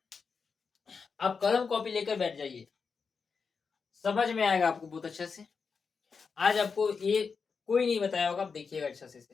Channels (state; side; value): quieter; right; 5.4 dB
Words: कलम कॉपी लेकर बैठ जाइए, समझ में आएगा आपको बहुत अच्छे से। आज आपको ये कोई नहीं बताया होगा, आप देखिएगा अच्छे